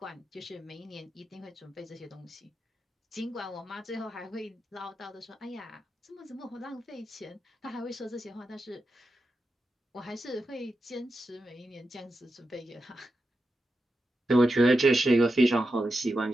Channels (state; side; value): normal; both; correlation 0.89